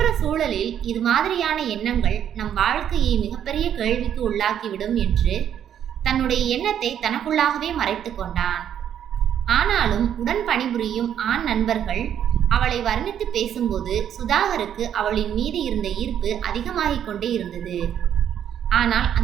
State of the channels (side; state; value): left; quieter; 9.6 dB